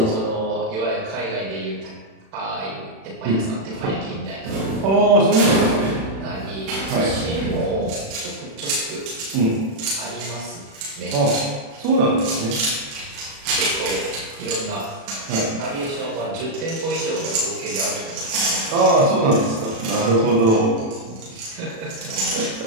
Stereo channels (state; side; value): late; left; 36 ms